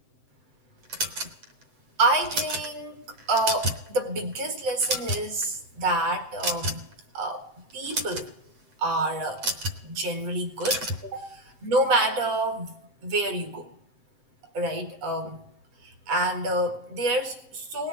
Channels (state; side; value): late; left; 7.7 ms